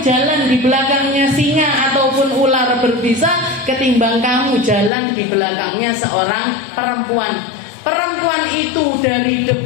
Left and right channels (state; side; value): drops out; right; at 4.9 s